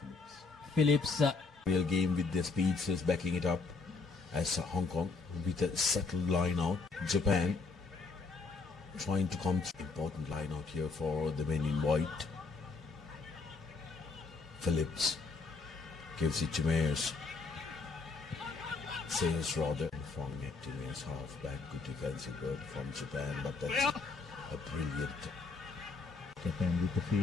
Phillips. Real game with their speedsters backing it up as Hong Kong with a settled line out. Japan trying to come through. Important line out here for the men in white. Phillips gives it to Mayers. Sayers rather from it to Mayers halfback. Good defensive work from Japan, but that's a brilliant. Japan with the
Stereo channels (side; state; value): right; quieter; 4.2 dB